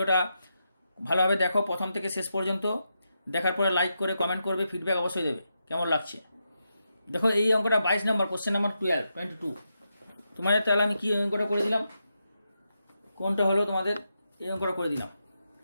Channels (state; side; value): inverted; both; correlation -0.85